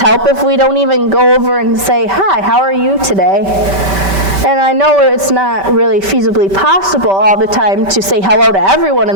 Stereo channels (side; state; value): left; late; 5.2 ms